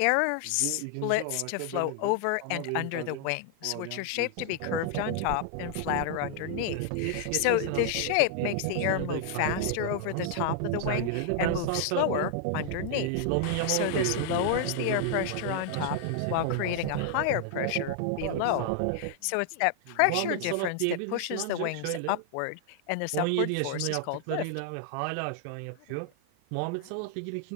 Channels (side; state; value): both; different; correlation 0.00